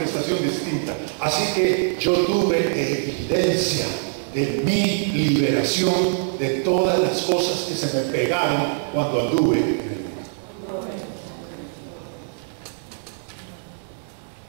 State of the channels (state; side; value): silent; left; digital silence